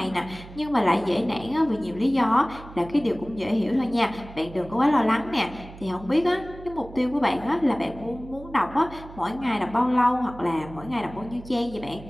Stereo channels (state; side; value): noise; right; hum, 17 dB below the sound